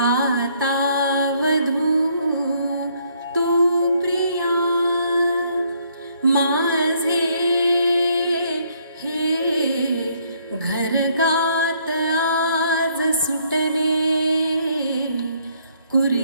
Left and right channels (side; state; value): both; inverted; correlation -0.68